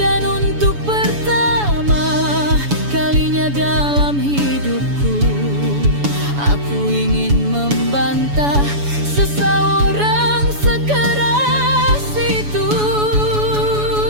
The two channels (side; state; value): left; late; 7.0 ms